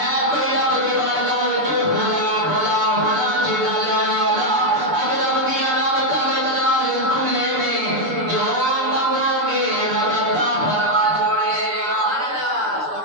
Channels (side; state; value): left; late; 6.8 ms